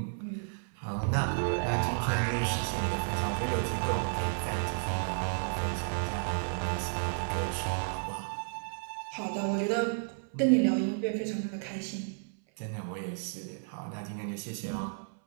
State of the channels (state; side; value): silent; left; 56 dB below the other